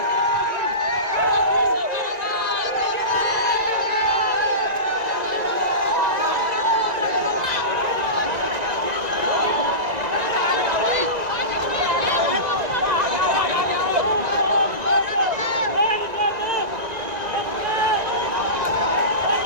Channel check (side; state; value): left; late; 1.9 ms